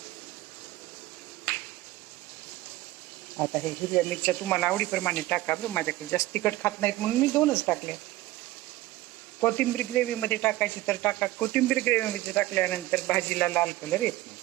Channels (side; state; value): left; quieter; 17.2 dB